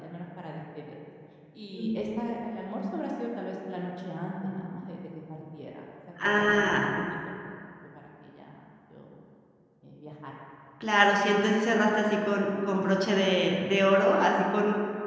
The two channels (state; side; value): identical; both; correlation 1.00